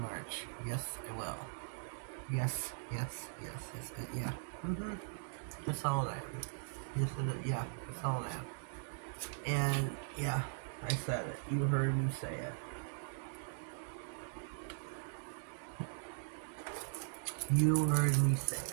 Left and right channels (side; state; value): left; silent; digital silence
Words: Yes, I will. Yes. Yeah. That's how old I am. Yes, yeah, that's how old I am. And, yeah, I said it. You heard me say it. You heard me say